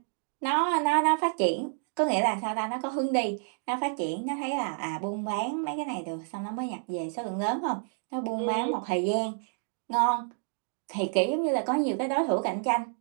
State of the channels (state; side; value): silent; left; 58 dB below the other